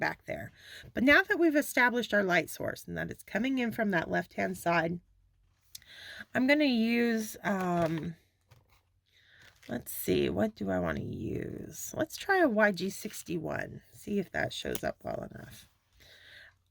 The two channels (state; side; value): identical; both; correlation 1.00